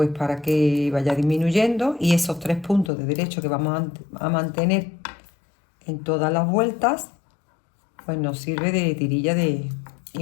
para que vaya disminuyendo y esos 3 puntos de derecho que vamos a mantener en todas las vueltas, pues nos sirve de tirilla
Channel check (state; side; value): drops out; right; at 2.9 s